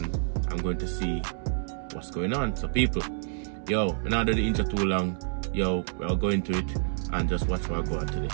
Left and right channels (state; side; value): silent; left; 59 dB below the other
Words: I'm going to see what's going on. So people, yo, we're not doing the intro too long. Yo, we're going to it and just watch what I go on